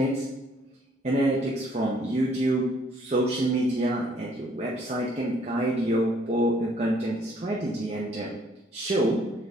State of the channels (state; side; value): normal; both; correlation 0.63